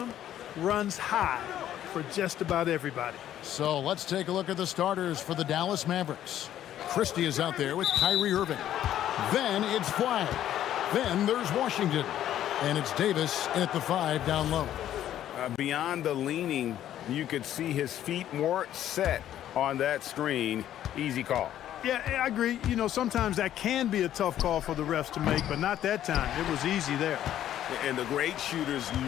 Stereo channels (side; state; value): right; quieter; 11.6 dB